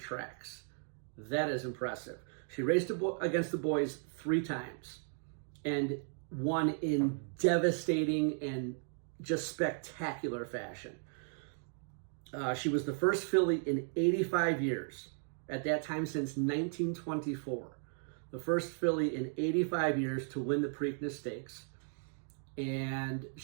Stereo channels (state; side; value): silent; left; 54 dB below the other